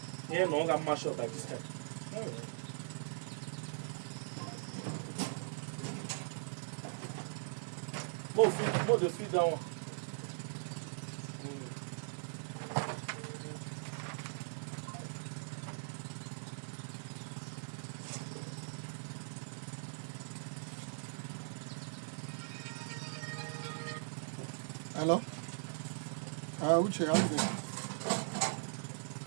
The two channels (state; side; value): silent; left; digital silence